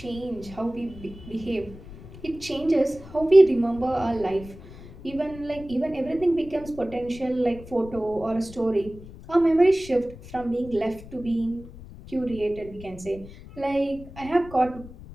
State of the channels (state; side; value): noise; left; rumble, 17 dB below the sound